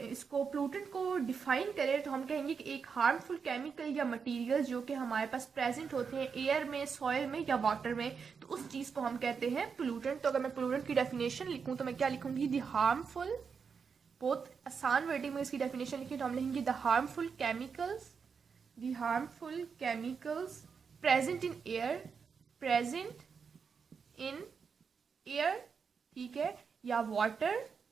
इसको पोल्यूटेंट को डिफाइन करें तो हम कहेंगे कि एक हार्मफुल केमिकल या मटेरियल जो कि हमारे पास प्रेजेंट होते हैं एयर में, सॉइल में या वाटर में, तो उस चीज़ को हम कहते हैं पोल्यूटेंट। तो अगर मैं पोल्यूटेंट की डेफिनेशन लिखूं तो मैं क्या लिखूंगी? द हार्मफुल, बहुत आसान वर्डिंग में इसकी डेफिनेशन लिखी तो हम लिखेंगे the harmful chemicals, the harmful chemicals present in air, present in air, ठीक है, या वाटर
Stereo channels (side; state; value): left; quieter; 5.9 dB